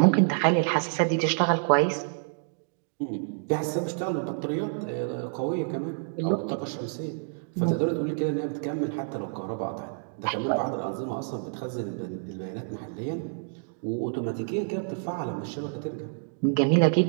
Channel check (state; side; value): silent; left; digital silence